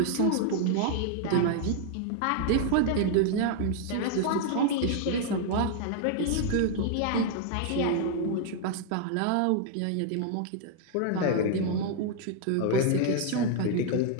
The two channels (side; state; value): both; different; correlation 0.00